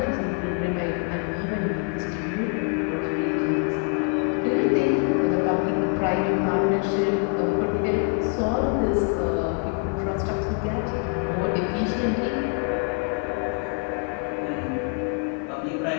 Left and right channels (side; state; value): right; quieter; 37.0 dB